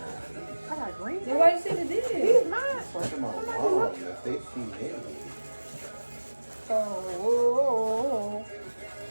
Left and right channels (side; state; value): both; inverted; correlation -1.00